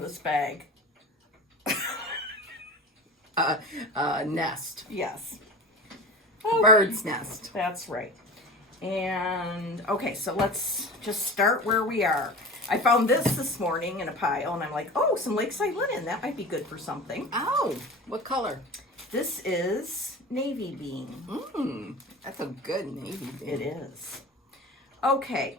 this bag. Nest. Yes. Bird's nest. That's right. And, okay, so let's just start where we are. I found this morning in a pile, and I'm like, oh, some Lakeside linen. That might be good for something. Oh, what color? This is navy bean. That's a good navy bean. It is. Okay.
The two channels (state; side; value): normal; both; correlation 0.33